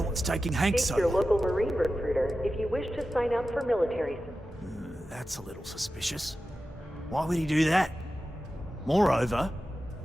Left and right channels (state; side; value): normal; both; correlation 0.93